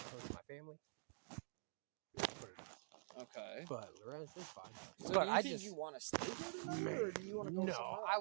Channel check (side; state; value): left; silent; digital silence